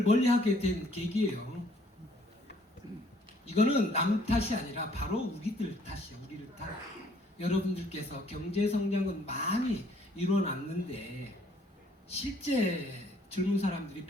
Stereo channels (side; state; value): both; normal; correlation 0.62